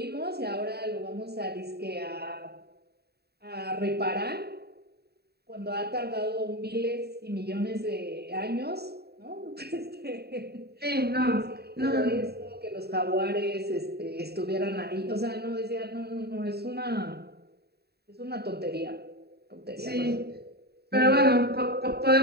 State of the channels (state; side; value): late; left; 0.47 ms